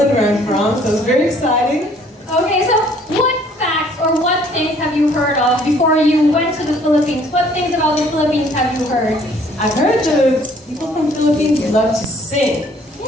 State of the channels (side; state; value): both; normal; correlation 0.59